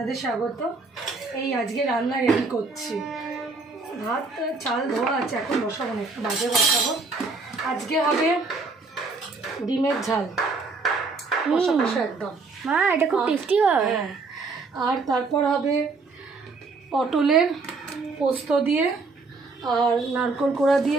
স্বাগত। এই আজকে রান্না রেডি করছি। ভাত চাল ধোয়া আছে, এখন বসাবো না, একটু বাজে বসাবো। আজকে হবে ডিমের ঝাল, কষা কষা একদম। মা এটা খুব টেস্টি হয়। হ্যাঁ, আর তারপর হবে পটলের পোস্ত দিয়ে আর নারকেল কোড়া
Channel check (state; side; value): quieter; left; 4.0 dB